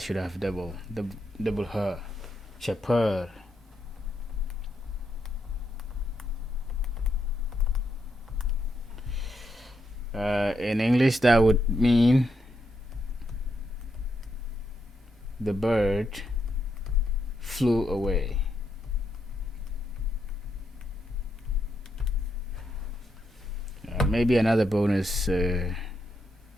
should have double her. Chauffeur. In English, that would mean the bird flew away. Maybe another bonus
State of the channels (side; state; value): both; normal; correlation 0.81